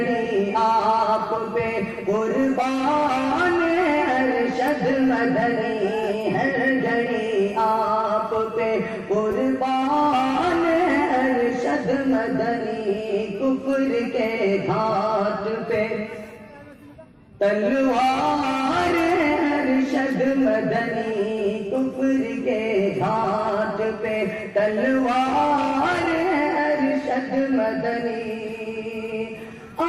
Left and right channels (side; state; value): both; identical; correlation 1.00